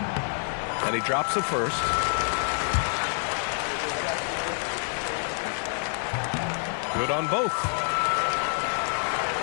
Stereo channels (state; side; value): silent; right; digital silence